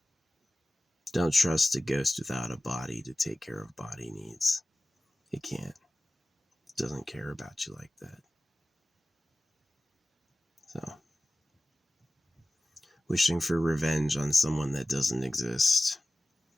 Don't trust a ghost without a body to take care of body needs. It can't. It doesn't care about you like that. So, wishing for revenge on someone that doesn't exist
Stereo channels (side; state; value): both; normal; correlation 0.95